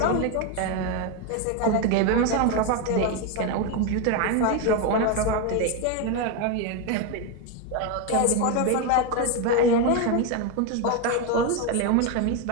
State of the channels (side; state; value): both; different; correlation 0.02